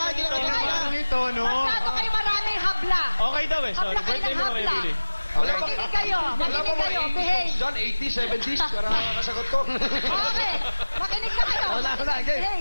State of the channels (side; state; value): both; inverted; correlation -1.00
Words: Hindi nakanta Hinanap na. lang yung tono. Masyado kayo maraming habla. Okay daw eh. Sorry. Habla kayo Birthday ng mo na kayo, habla. Billy. Makinig kayo. Makinig kayo. Behave. John, 80s, 70s. Para makasagot ko. Okay. Makinig na kayo. Wala, game.